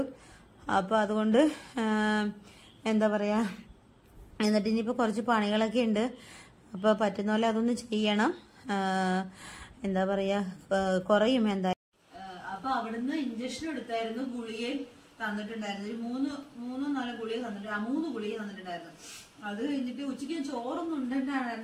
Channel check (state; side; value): identical; both; correlation 1.00